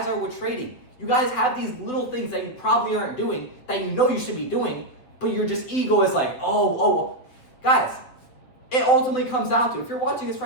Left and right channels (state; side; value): late; right; 8.1 ms